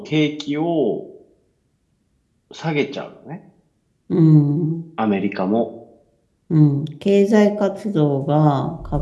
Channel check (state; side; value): identical; both; correlation 1.00